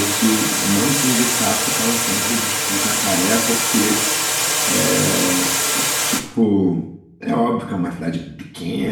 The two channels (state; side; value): identical; both; correlation 1.00